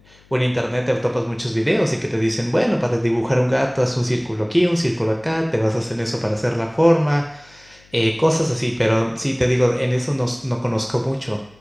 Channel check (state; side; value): noise; left; hum, 29 dB below the sound